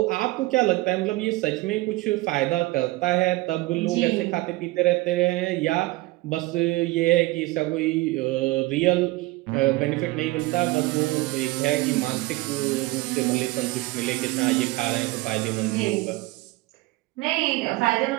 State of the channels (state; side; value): quieter; left; 20.5 dB